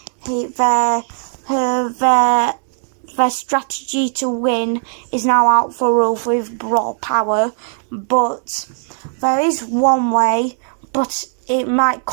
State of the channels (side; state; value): left; silent; 59 dB below the other